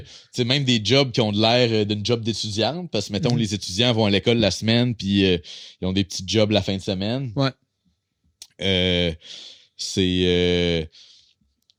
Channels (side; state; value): both; identical; correlation 1.00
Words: même des jobs qui ont de l'air d'une job d'étudiante, parce que mettons, les étudiants vont à l'école la semaine, puis ils ont des petits jobs la fin de semaine. Ouais. Qu'est-ce